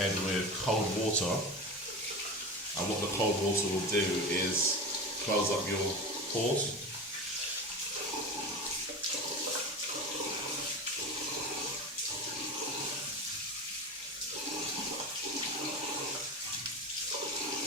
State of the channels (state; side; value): normal; both; correlation 0.27